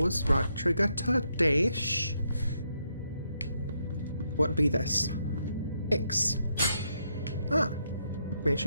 Right trigger to dash. What be this? X. Ah.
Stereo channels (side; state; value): both; inverted; correlation -0.78